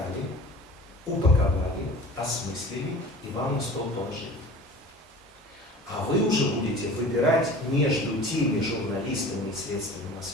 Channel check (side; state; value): both; normal; correlation 0.41